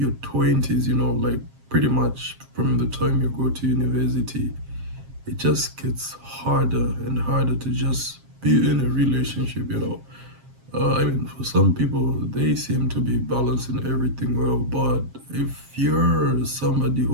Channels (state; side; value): late; left; 7.4 ms